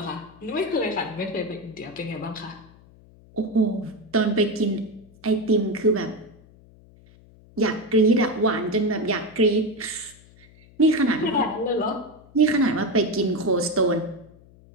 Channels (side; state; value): left; noise; hum, 25 dB below the sound